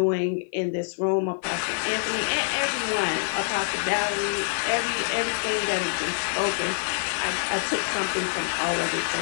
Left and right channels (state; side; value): silent; right; 57 dB below the other